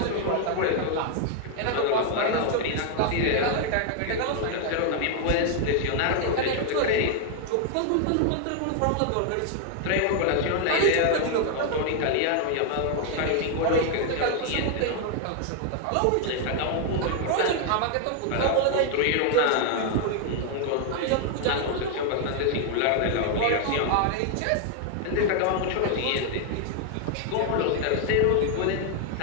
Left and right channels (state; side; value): different; both; correlation 0.00